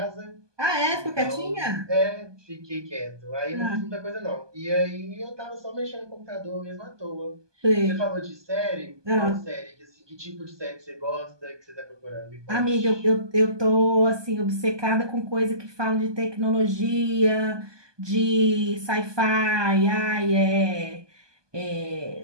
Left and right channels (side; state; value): left; late; 1.2 ms